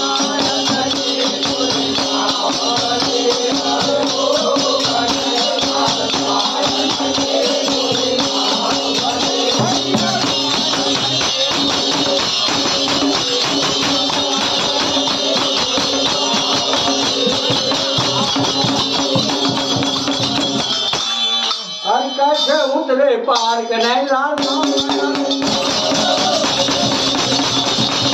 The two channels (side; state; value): both; identical; correlation 1.00